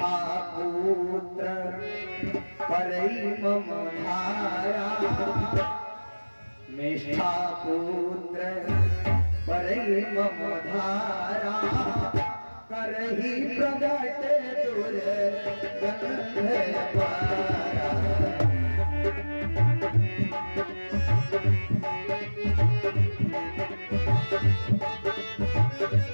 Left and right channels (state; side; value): inverted; both; correlation -1.00